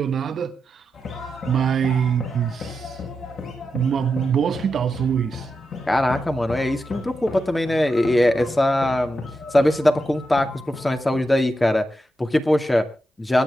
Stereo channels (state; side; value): normal; both; correlation 0.87